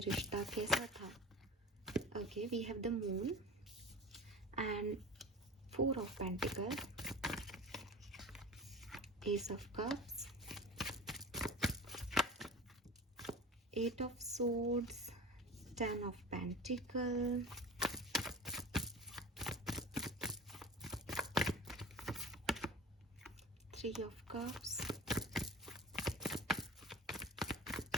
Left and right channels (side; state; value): both; normal; correlation 0.36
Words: कैसा था। Okay, we have the moon and 4 of pentacle, ace of cups, 8 of swords, 10 of Pentacle, 3 of Cups,